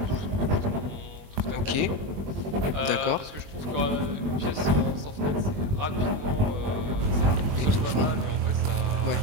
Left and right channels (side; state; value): left; late; 21 ms